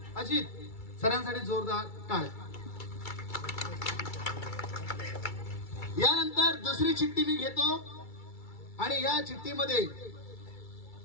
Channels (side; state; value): right; late; 2.3 ms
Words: अजित. सरांसाठी जोरदार टाळ्या. यानंतर दुसरी चिठ्ठी मी घेतो आणि या चिठ्ठीमध्ये